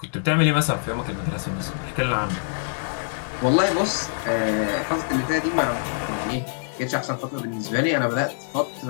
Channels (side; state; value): right; silent; digital silence